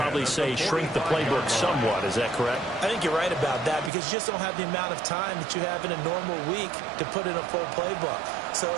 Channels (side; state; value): left; drops out; at 3.9 s